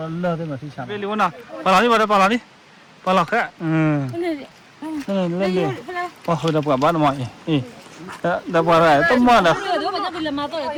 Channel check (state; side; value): identical; both; correlation 1.00